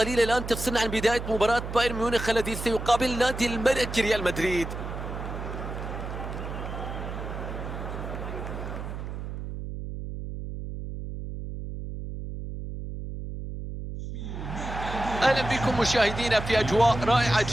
الآن تفصلنا عن بداية مباراة بايرن ميونخ الذي سيقابل نادي الملك ريال مدريد. اهلا بكم مشاهدينا في اجواء رائعه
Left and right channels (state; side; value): noise; right; hum, 7 dB below the sound